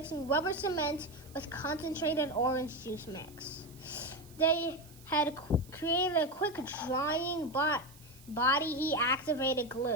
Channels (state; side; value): noise; right; hiss, 23 dB below the sound